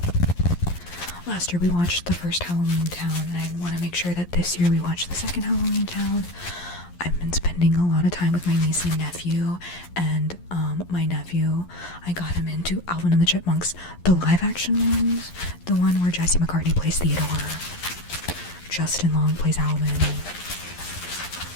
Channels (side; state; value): right; late; 11 ms